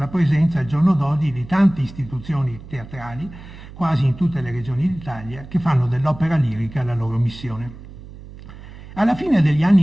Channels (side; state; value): right; noise; hum, 16 dB below the sound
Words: presenza al giorno d'oggi di tante istituzioni teatrali, quasi in tutte le regioni d'Italia, che fanno dell'opera lirica la loro missione. Alla fine degli